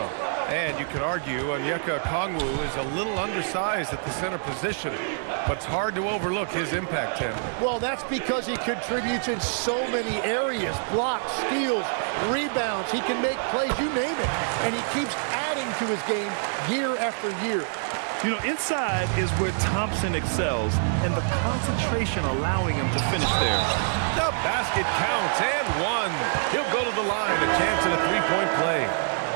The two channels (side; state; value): left; silent; 61 dB below the other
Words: And you could argue Onyeka Okongwu is a little undersized at the center position, but it's hard to overlook his impact, Tim. Well, that's because he contributes in so many areas. Blocks, steals, rebounds. He can make plays, you name it. And he keeps adding to his game year after year. You know, inside is where Thompson excels, and the concentration allowing him to finish there. The basket counts, and one. He'll go to the line, a chance at a three-point play.